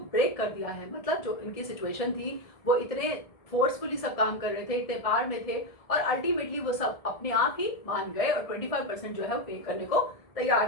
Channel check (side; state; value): right; late; 1.7 ms